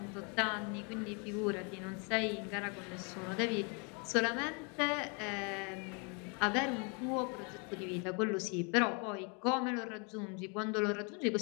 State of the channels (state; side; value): quieter; right; 34.3 dB